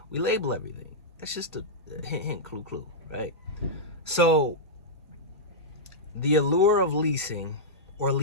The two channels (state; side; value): normal; both; correlation -0.10